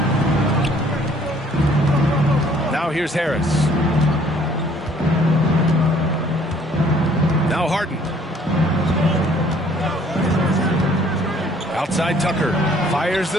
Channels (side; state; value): both; normal; correlation 0.59